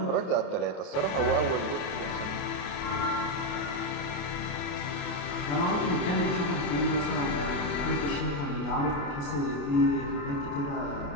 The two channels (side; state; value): right; late; 28 ms